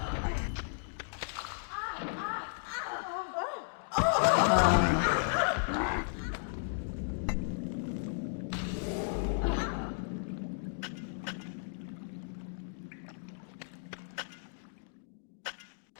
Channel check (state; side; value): silent; right; digital silence